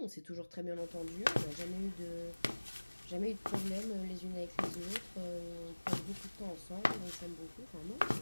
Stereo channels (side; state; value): both; inverted; correlation -1.00